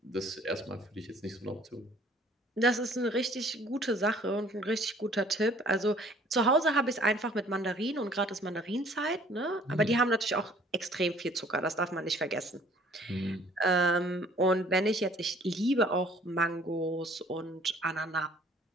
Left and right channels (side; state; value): both; normal; correlation 0.55